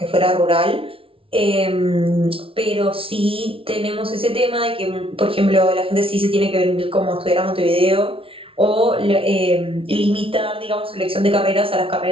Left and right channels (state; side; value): late; left; 0.26 ms